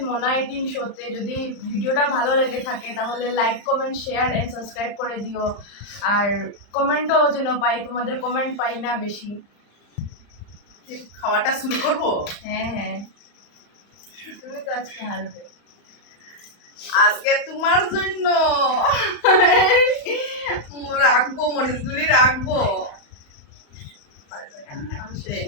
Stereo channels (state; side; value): late; right; 35 ms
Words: মোনা 18 শোতে। যদি ভিডিওটা ভালো লেগে থাকে তাহলে like, comment, share and subscribe করে দিও। আর কমেন্টও যেন পাই, তোমাদের কমেন্ট পাই না বেশি। খাওয়াটা শুরু করব। হ্যাঁ, তুমি তো আজকে হারবে। আজকে তোমার জন্য রাখবো, মরিচগুলি রাখবো।